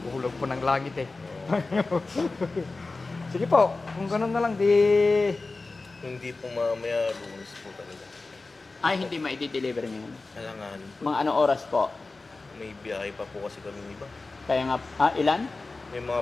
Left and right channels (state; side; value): quieter; right; 3.6 dB